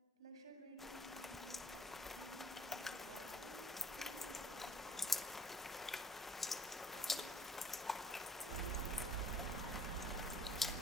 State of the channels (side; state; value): both; normal; correlation 0.55